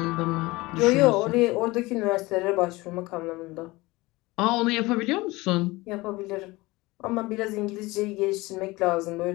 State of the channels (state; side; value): quieter; right; 21.4 dB